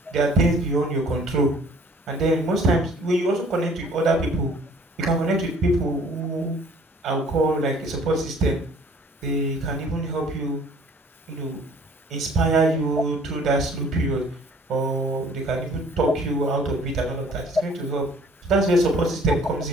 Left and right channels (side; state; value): both; normal; correlation 0.55